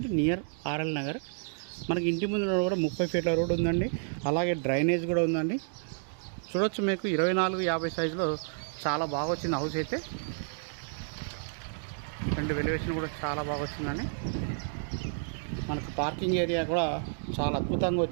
నియర్ ఆర్ఎల్ నగర్. మనకి ఇంటి ముందు కూడా 30 ఫీట్ల రోడ్ ఉందండి, అలాగే డ్రైనేజ్ కూడా ఉందండి. చూడొచ్చు, మీకు 24-50 సైజులో చాలా బాగా వచ్చింది హౌస్ అయితే. రెండు వెలివేషన్ కూడా చాలా బాగా వచ్చిందండి. మనకు పార్కింగ్ ఏరియా కూడా చాలా అద్భుతంగా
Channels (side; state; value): left; silent; digital silence